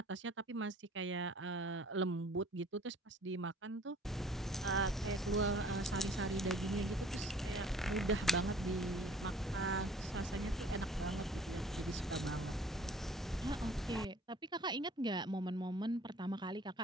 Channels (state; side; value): normal; both; correlation 0.53